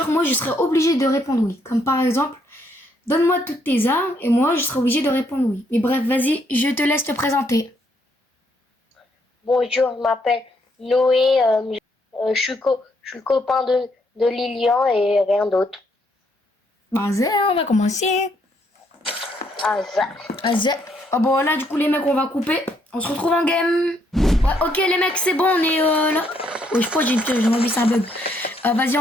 moi, je serai obligée de répondre oui. Comme par exemple, donne-moi toutes tes armes et moi, je serai obligée de répondre oui. Mais bref, vas-y, je te laisse te présenter. Bonjour, je m'appelle Noé, je suis le copain de Lilian et rien d'autre. Vas-y, on va commencer. Ah, ça. Vas-y. Ah bon, là, du coup, les mecs, on va couper. On se retrouve en game. Ouais, ok, les mecs, c'est bon, on est là. Oh, je crois que j'ai envie, c'est un bug. Vas-y,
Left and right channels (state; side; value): normal; both; correlation 0.72